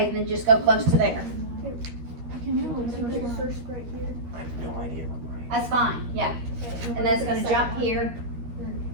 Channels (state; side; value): late; left; 13 ms